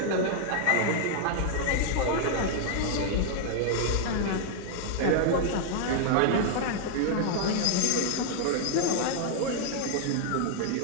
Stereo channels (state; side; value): different; both; correlation 0.00